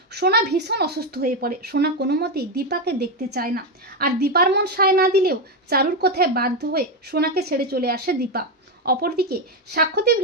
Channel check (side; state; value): both; normal; correlation 0.08